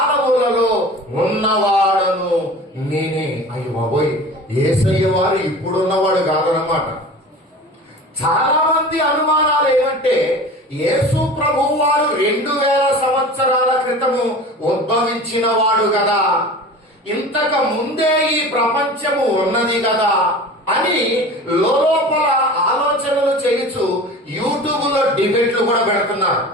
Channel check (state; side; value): normal; both; correlation 0.37